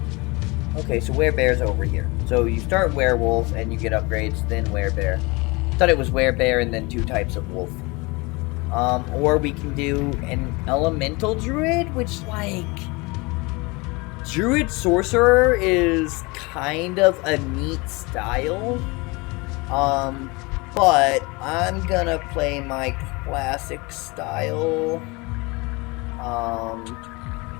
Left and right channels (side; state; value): right; quieter; 25.9 dB